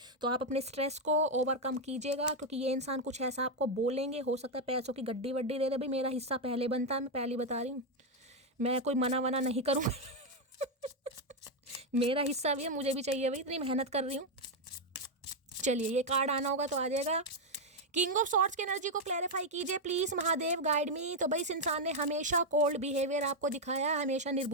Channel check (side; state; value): both; normal; correlation 0.03